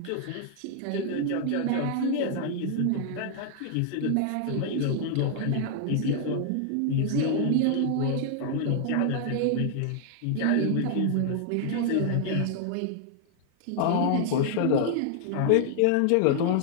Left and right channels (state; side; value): different; both; correlation 0.00